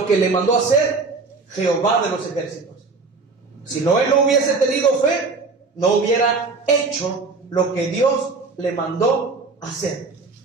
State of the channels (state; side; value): quieter; left; 4.1 dB